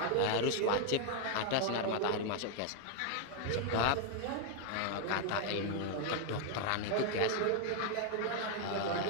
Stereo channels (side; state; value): both; different; correlation 0.00